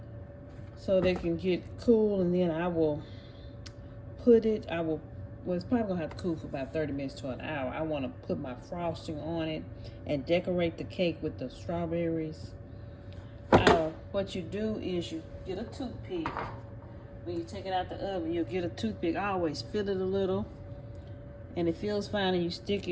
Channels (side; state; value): both; identical; correlation 1.00